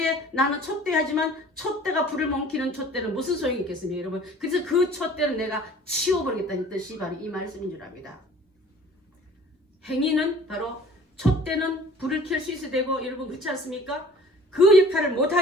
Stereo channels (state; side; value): normal; both; correlation 0.49